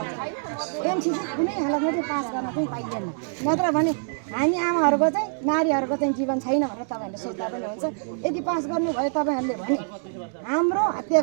एमसिसी कुनै हालतमा चाहिँ पास गर्न चाहिँ पाइँदैन। नत्र भने हामी आमाहरूको चाहिँ नारीहरूको चाहिँ जीवन छैन भनेर तपाईँहरूले सोच्दा पनि हुन्छ। यदि पास गर्नुभयो तपाईँहरूले भने हाम्रो हत्या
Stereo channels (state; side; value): silent; left; digital silence